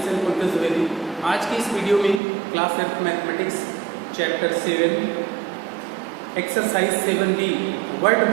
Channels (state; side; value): drops out; left; at 2.2 s